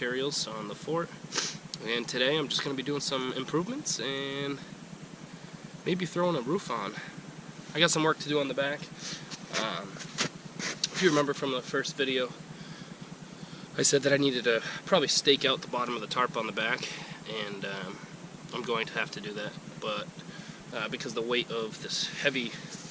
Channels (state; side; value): identical; both; correlation 1.00